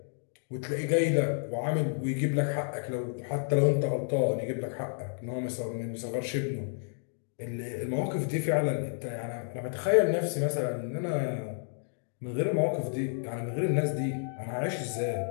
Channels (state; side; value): silent; right; digital silence